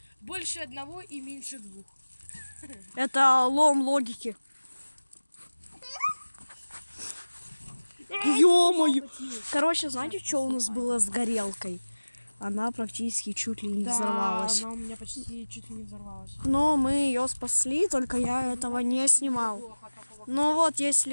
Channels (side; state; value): both; inverted; correlation -1.00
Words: больше одного и меньше двух. Это лом логики. Ё-моё! Короче, знаете, что у нас было с горелкой? Она практически чуть ли не взорвалась. Она у меня почти чуть ли не взорвалась. Но мы ее спасли, только я этого не снимал. Ну вот, есть